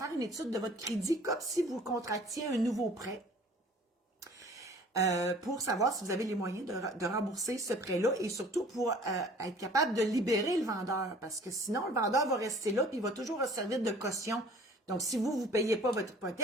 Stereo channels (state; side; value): normal; both; correlation 0.49